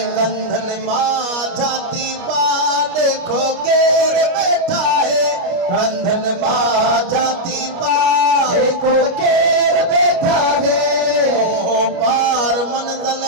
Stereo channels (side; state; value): left; late; 29 ms